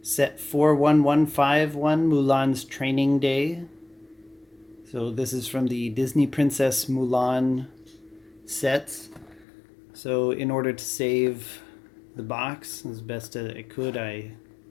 set 41151, Mulan's Training Day. So this is from the Disney Princess Mulan sets. So in order to save the box as best as I could, I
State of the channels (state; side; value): drops out; right; at 9.5 s